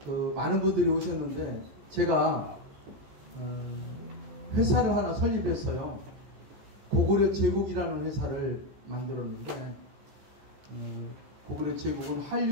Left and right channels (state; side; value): late; left; 14 ms